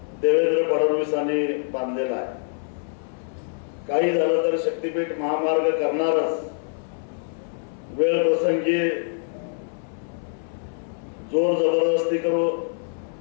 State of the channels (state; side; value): silent; right; 60 dB below the other